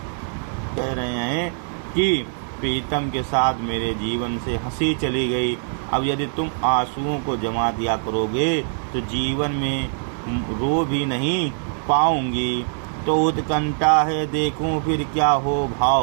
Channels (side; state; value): left; silent; digital silence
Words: कह रहे हैं कि प्रीतम के साथ मेरे जीवन से हंसी चली गई। अब यदि तुम आंसुओं को जमा दिया करोगे तो जीवन में रो भी नहीं पाऊंगी। तो उत्कंठा है देखूं फिर क्या हो